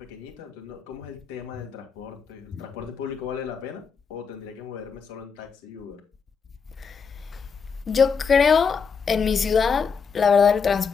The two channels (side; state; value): right; quieter; 5.9 dB